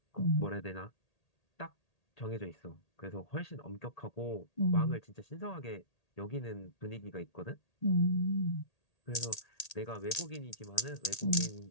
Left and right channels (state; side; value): late; right; 1.8 ms